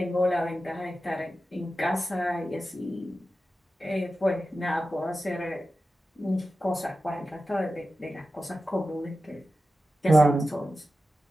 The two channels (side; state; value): both; normal; correlation 0.93